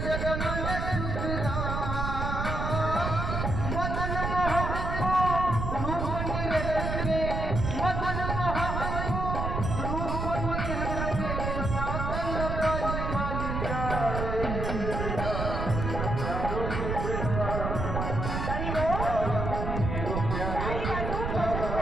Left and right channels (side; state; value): right; noise; rumble, 2 dB below the sound